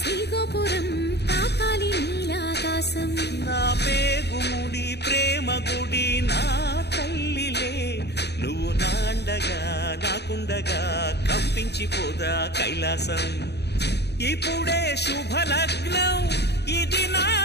తాకాలి నీలాకాశం. నా పేగుముడి ప్రేమ గుడి నా తల్లిలే నువ్వు నాండగా నాకుండగా కంపించిపోదా కైలాసం. ఇప్పుడే శుభలగ్నం ఇది నా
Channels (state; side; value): late; right; 0.48 ms